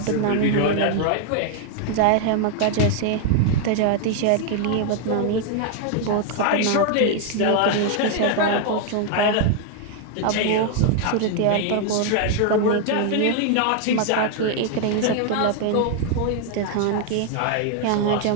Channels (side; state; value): both; different; correlation 0.00